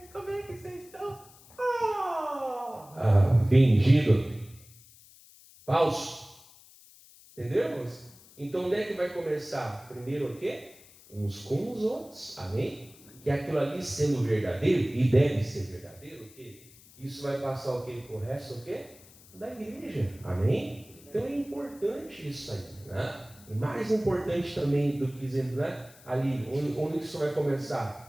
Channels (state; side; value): noise; left; hiss, 23 dB below the sound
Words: como é que vocês estão? Fingido. Falso. Entendemos? Então onde é que vai começar? Primeiro o quê? Uns com os outros. Amém? Que aquilo ali sendo verdadeiro, e deve ser verdadeiro, o quê? Isso vai passar o quê? Pro resto o quê? Da igreja. Amém? Então é importante isso aí, né? E mais importante também do que dizendo, né? Ali, onde isso vai